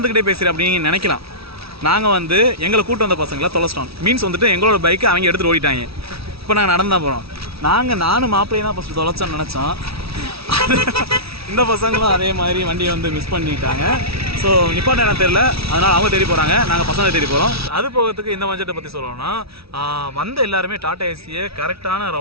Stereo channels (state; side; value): late; left; 0.76 ms